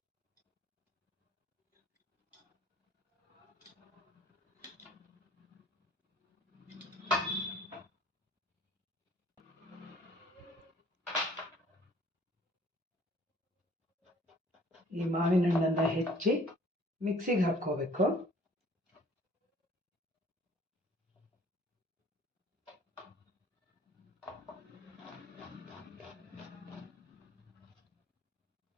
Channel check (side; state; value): both; normal; correlation 0.55